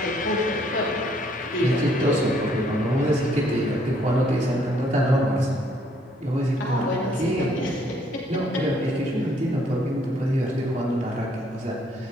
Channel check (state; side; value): normal; both; correlation 0.66